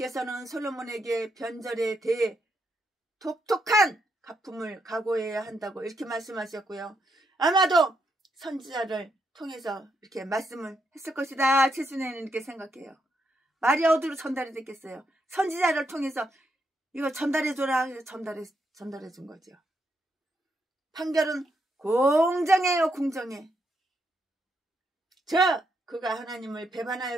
솔로몬에게 변절에 대해 독특한 가품을 각오해야 한다고 이렇게 말씀하셨고요. 아마도 선지자를 통해서 이렇게 말씀을 했을 것이다. 최순애는 이렇게 생각해요. 말이 어디로 전달이 됐겠어요. 선지자를 통해서 이거 전달해줘라. 전달해 준 거죠. 판결은 공정해요. 공정해. 그가 하나님을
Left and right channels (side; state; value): both; normal; correlation 0.79